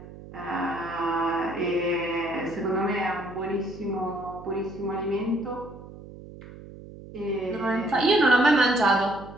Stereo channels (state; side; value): noise; right; hum, 16 dB below the sound